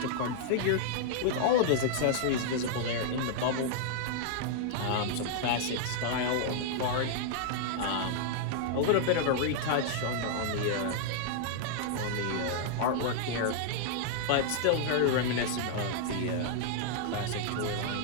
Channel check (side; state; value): both; different; correlation -0.01